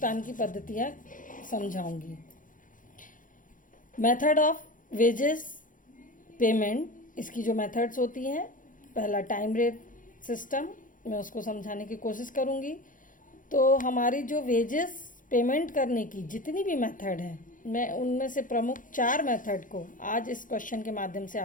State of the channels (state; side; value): late; right; 0.39 ms